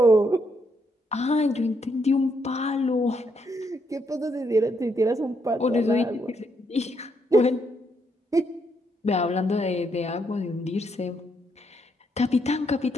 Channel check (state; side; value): normal; both; correlation 0.76